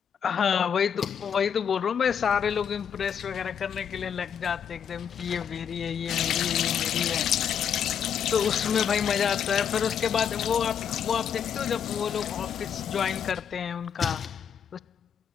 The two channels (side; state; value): right; quieter; 8.0 dB